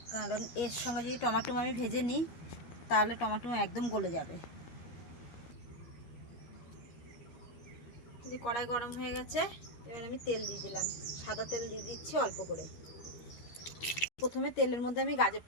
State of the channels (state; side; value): late; right; 12 ms